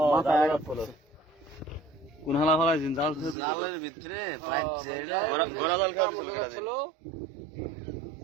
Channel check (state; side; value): drops out; left; at 3.4 s